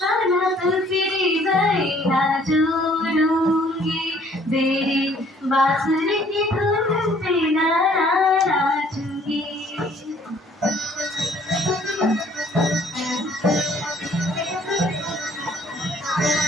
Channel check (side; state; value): both; normal; correlation 0.59